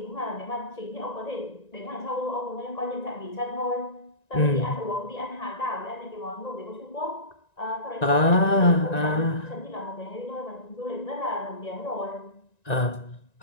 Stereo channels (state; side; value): late; right; 1.9 ms